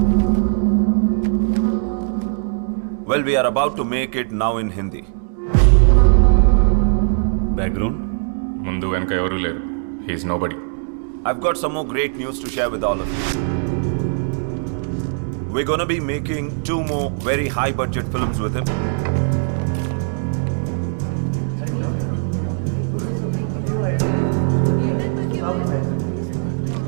Well, we are about to make it now in Hindi. Background? ముందు వెనక ఎవరూ లేరు. He is nobody. I've got some more great news to share with all of you. We're gonna be making 2 more very high budget films with him.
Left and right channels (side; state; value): left; silent; digital silence